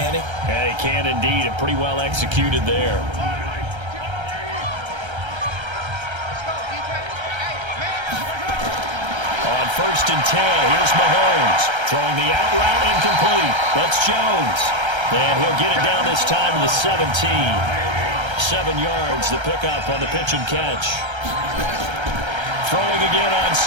he? Yeah, he can indeed, and pretty well executed there. On 1st and 10, here's Mahomes. Throwing the out route incomplete. That's Jones. And he'll get it down this time to the 17. 7 yards, the pickup on the pitch and catch. Throwing again on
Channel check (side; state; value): left; late; 1.3 ms